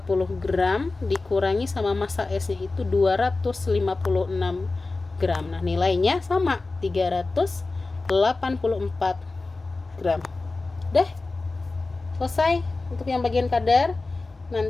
gram dikurangi sama massa S-nya itu 256 gram. Nah, nilainya sama 384 gram. Udah selesai untuk yang bagian kadar.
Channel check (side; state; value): right; quieter; 3.5 dB